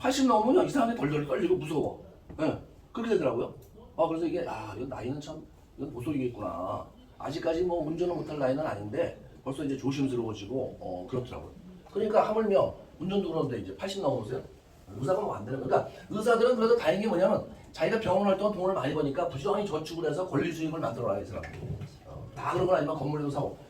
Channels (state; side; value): identical; both; correlation 1.00